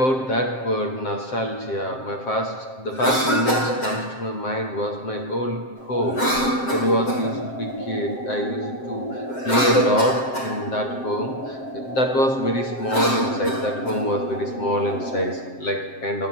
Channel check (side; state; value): right; late; 7.6 ms